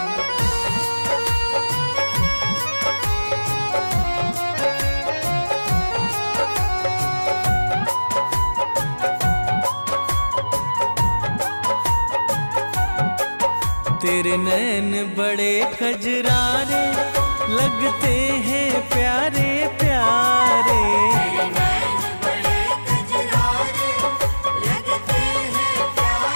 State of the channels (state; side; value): inverted; both; correlation -1.00